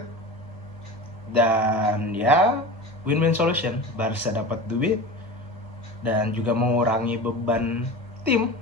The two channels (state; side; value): normal; both; correlation 0.31